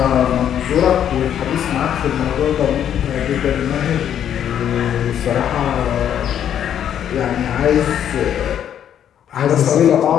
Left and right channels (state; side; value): quieter; right; 9.7 dB